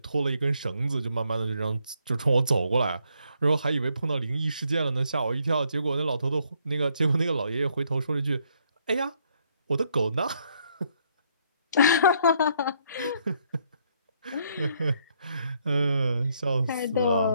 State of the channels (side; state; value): both; inverted; correlation -0.71